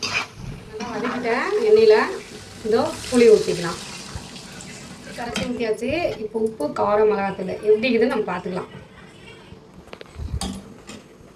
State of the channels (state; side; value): identical; both; correlation 1.00